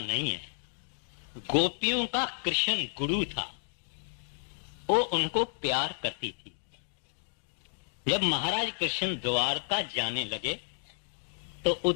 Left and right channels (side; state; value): right; silent; digital silence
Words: नहीं है। गोपियों का कृष्ण गुरु था, वो उनको प्यार करती थी। जब महाराज कृष्ण द्वारका जाने लगे तो